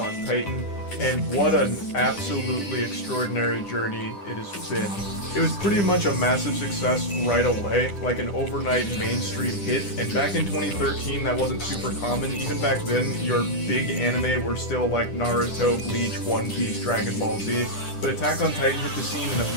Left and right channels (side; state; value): right; late; 10 ms